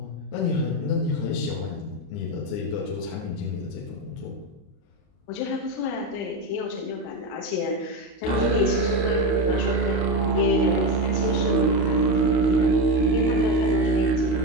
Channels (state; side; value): late; right; 28 ms